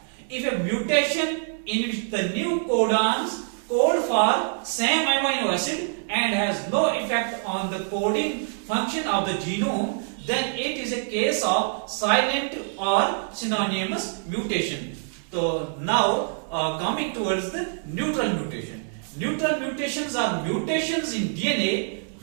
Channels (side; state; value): left; silent; digital silence